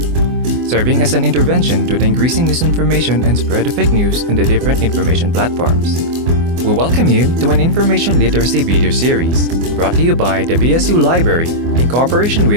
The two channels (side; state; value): left; late; 24 ms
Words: serving as an intervention to the increasing misinformation and spread of fake news on the different information platforms. We welcome you to an information literacy video series brought to you by the BSU Library in cooperation